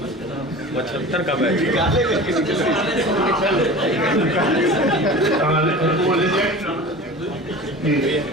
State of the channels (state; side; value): normal; both; correlation 0.36